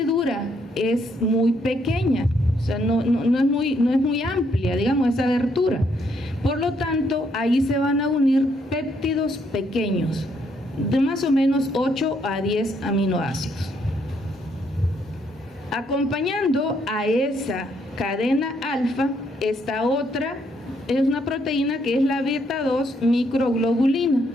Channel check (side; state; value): both; normal; correlation 0.72